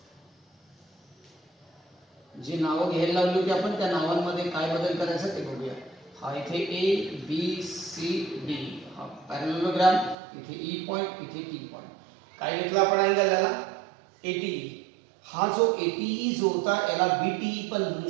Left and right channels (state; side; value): drops out; left; at 10.2 s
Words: जी नावं घ्यायला लावली होती आपण त्या नावांमध्ये काय बदल करायचा ते बघूया. हा इथे ए बी सी डी हा पॅरलेलोग्राम, इथे ई पॉइंट, इथे टी पॉइंट. काय घेतलं आपण अँगल याला, एटी. हा जो एटीई जो होता याला बीटीई पण म्हणू